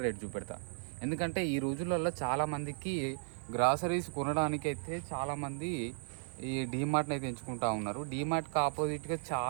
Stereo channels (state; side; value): silent; left; 54 dB below the other